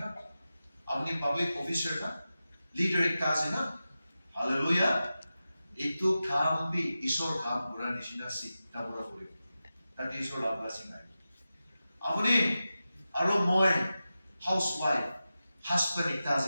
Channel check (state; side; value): inverted; both; correlation -0.93